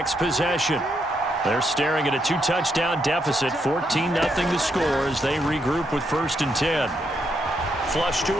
possession. They're staring at a 2-touchdown deficit, 14-0 the score as they regroup with 1st and 10. Flush to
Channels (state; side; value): normal; both; correlation 0.78